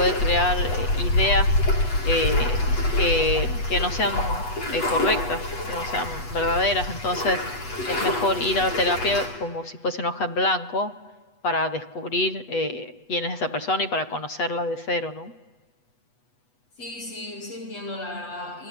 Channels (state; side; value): late; right; 8.2 ms